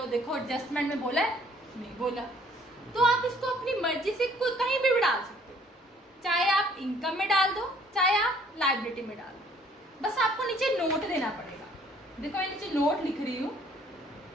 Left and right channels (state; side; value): normal; both; correlation 0.59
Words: देखो एडजस्टमेंट में बोला है, नहीं बोला, तो आप इसको अपनी मर्जी से कहीं भी डाल सकते हो, चाहे आप इनकम में डाल दो, चाहे आप लायबिलिटी में डाल दो, बस आपको नीचे नोट देना पड़ेगा। देखो मैं नीचे नोट लिख रही हूँ,